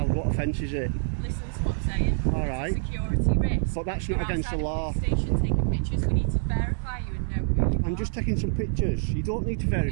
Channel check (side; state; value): left; silent; digital silence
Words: What offence is it? Listen to what I'm saying. All right. It's a security risk. But that's not You're against the outside a law. police station taking pictures. We need to verify you and know who you are. I'm just taking some pictures. You don't need to